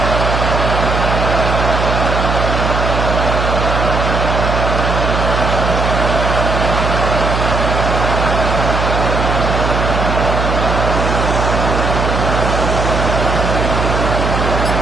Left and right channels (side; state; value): right; noise; hum, 1 dB below the sound